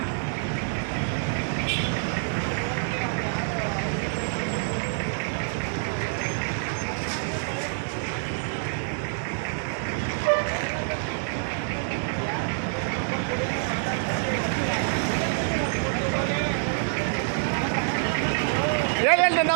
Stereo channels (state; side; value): silent; left; 60 dB below the other